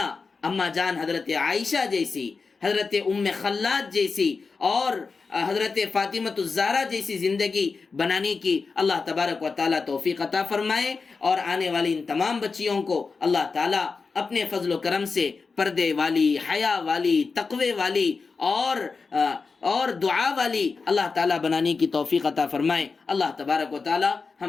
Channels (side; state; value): right; quieter; 4.6 dB